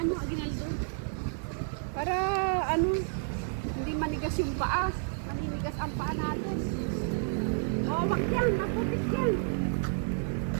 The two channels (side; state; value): left; silent; digital silence